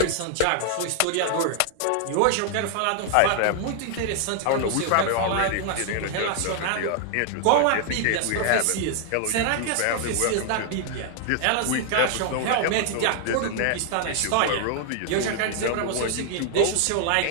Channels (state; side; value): different; both; correlation 0.00